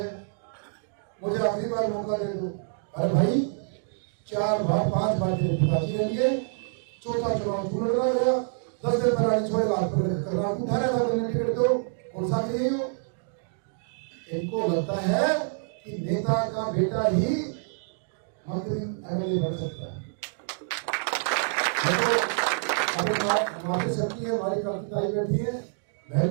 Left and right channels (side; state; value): left; silent; digital silence